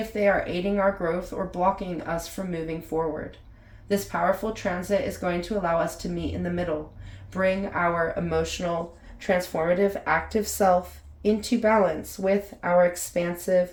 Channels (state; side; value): identical; both; correlation 1.00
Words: they are aiding our growth or blocking us from moving forward. This powerful transit is going to allow us to meet in the middle, bring our emotional, transformative, active self into balance with our expansive,